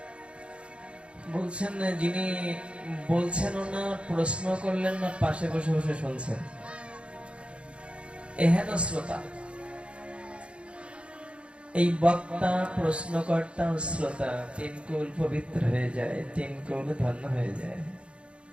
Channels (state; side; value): late; left; 0.058 ms